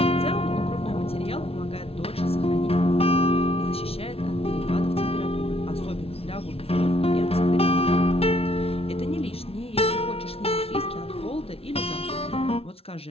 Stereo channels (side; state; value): right; late; 0.28 ms